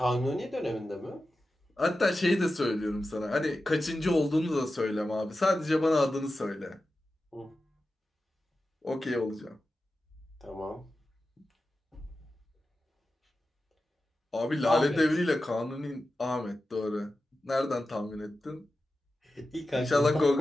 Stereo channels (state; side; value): normal; both; correlation 0.93